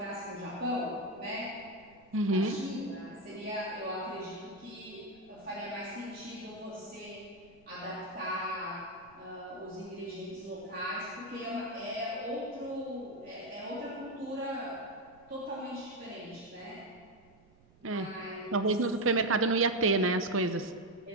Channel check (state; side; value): noise; right; rumble, 28 dB below the sound